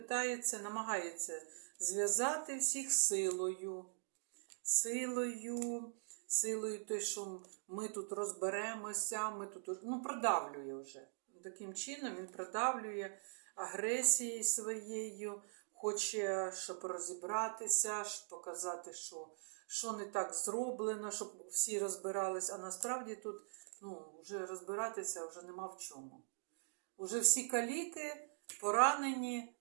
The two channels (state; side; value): silent; left; digital silence